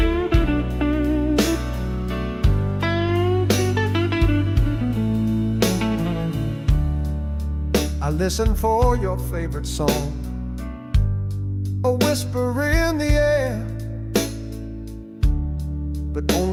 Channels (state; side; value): identical; both; correlation 1.00